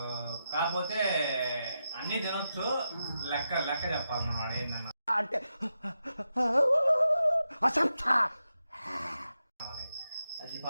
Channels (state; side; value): inverted; both; correlation -0.87